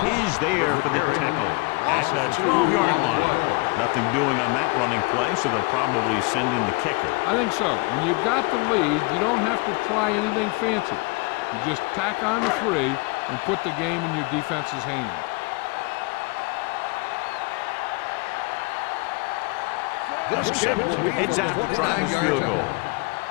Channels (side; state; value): right; quieter; 27.5 dB